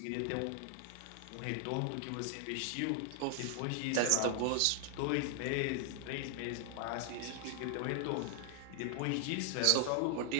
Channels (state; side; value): different; both; correlation 0.00